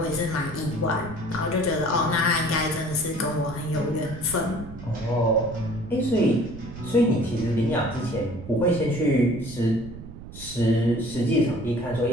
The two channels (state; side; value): noise; right; rumble, 13 dB below the sound